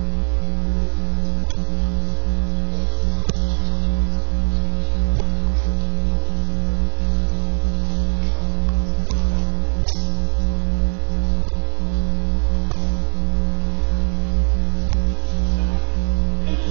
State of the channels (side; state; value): left; silent; 61 dB below the other